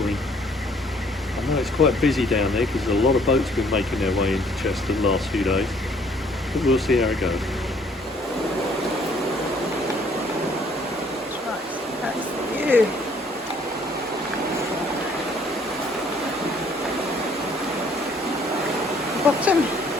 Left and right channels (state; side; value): normal; both; correlation 0.61